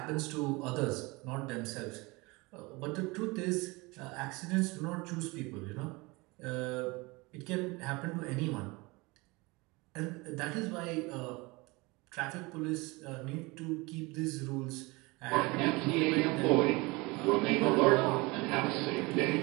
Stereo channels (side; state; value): left; quieter; 24.8 dB